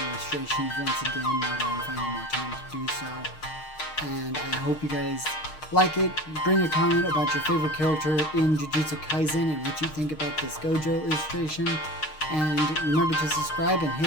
once again now that I'm finding more time to do so. And I hope you guys like it. Bring a comment about your favorite character in Jujutsu Kaisen and what you think about this Gojo illustration. And remember to subscribe and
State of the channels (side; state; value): right; late; 6.5 ms